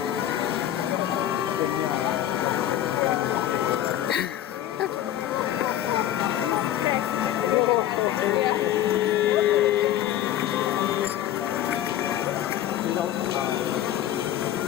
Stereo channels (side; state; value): right; quieter; 12.1 dB